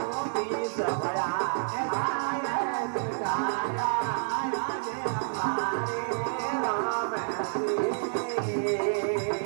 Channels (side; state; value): left; silent; 59 dB below the other